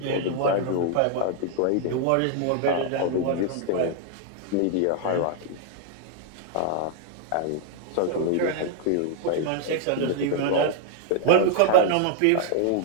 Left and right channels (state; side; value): different; both; correlation 0.00